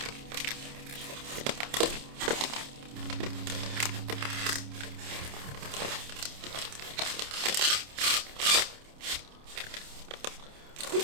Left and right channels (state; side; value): late; left; 28 ms